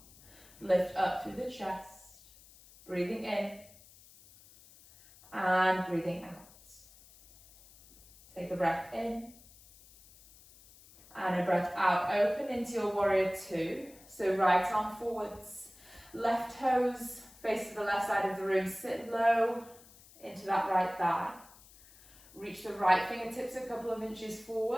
Lift up through the chest. Breathing in and breathing out. Take a breath in and a breath out. Open into your warrior two. So right arm forwards, left toes face to the left side of the room. Sit low into that right thigh. Reach the right fingertips a couple of inches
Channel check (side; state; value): left; noise; hiss, 23 dB below the sound